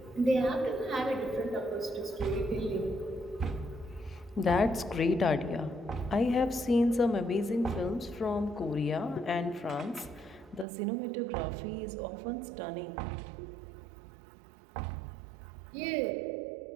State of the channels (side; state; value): left; drops out; at 10.7 s